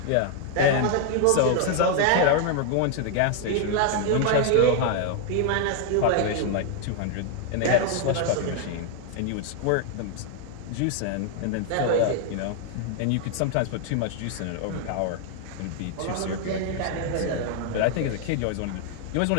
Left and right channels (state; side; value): different; both; correlation 0.00